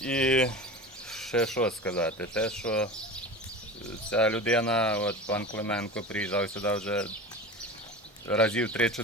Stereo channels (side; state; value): both; normal; correlation 0.32